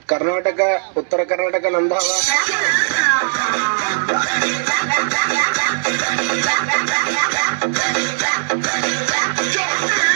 ಕರ್ನಾಟಕ, ಉತ್ತರ ಕರ್ನಾಟಕ ನಮ್ದಾವ.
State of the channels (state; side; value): silent; left; 67 dB below the other